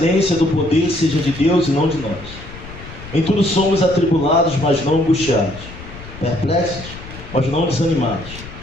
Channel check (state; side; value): noise; left; rumble, 14 dB below the sound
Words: do poder seja de Deus e não de nós. Em tudo somos atribulados, mas não angustiados, perplexos, mas não desanimados,